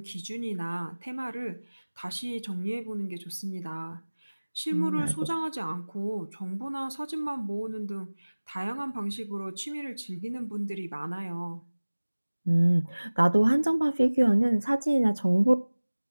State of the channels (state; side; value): inverted; both; correlation -1.00